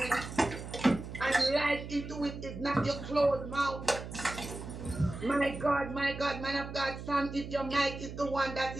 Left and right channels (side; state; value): right; noise; hum, 10 dB below the sound